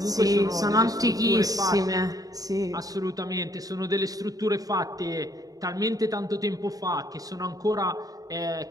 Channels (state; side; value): late; left; 0.18 ms